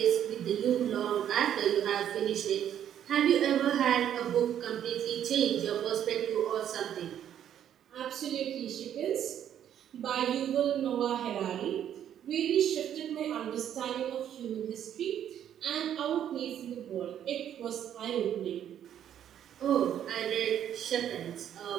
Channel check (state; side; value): quieter; left; 10.1 dB